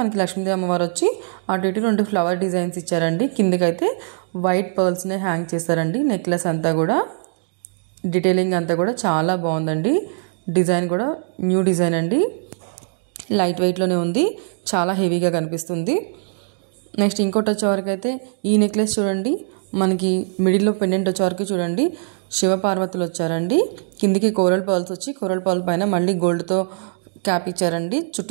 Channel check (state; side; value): silent; left; digital silence